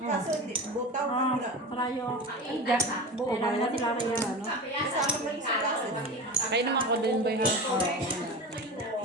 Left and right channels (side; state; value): both; normal; correlation 0.29